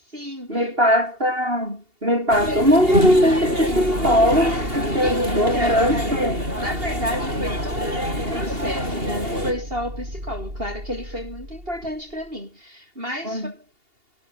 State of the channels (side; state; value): left; late; 2.8 ms